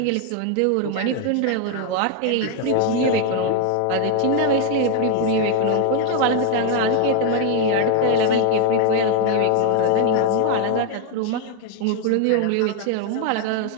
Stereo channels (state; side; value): different; both; correlation 0.01